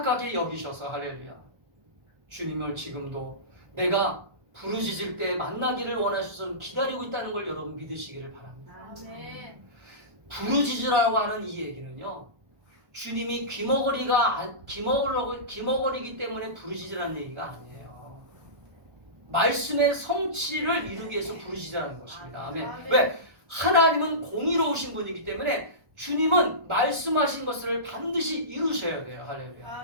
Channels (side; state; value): left; late; 1.2 ms